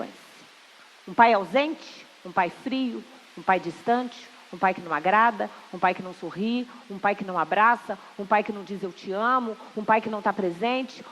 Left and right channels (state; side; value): identical; both; correlation 1.00